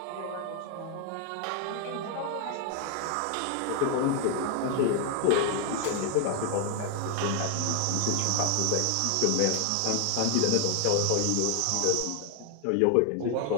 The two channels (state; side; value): different; both; correlation 0.00